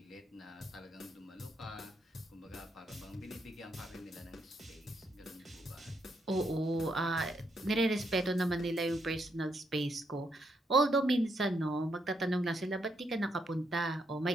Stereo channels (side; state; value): both; normal; correlation 0.77